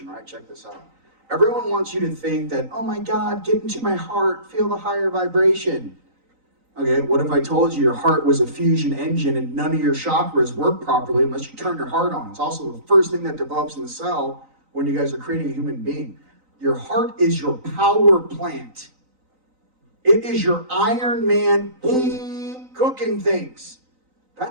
right? Check this out. Everyone wants you to think that, oh my God, get into my heart, feel the higher vibration. Okay, what if I told you your heart was a fusion engine and none of your chakras work properly unless you turn your heart on? It's also the first thing that develops in the cell when you guys are creating a human being. Your heart is your power plant. It is your Iron Man, boom, cooking things.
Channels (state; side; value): late; left; 3.9 ms